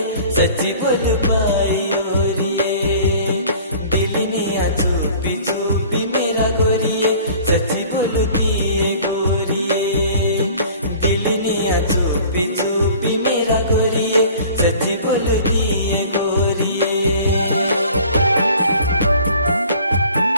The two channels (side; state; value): both; inverted; correlation -0.48